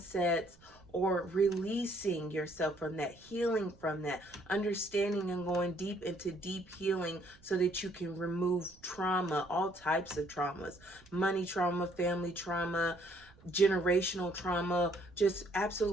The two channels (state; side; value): noise; right; rumble, 26 dB below the sound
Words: or releasing yourself from that, healing from that, understanding and going deep into deep healing so that you can remove trauma, all types of traumas, money trauma, family trauma, generational trauma. Just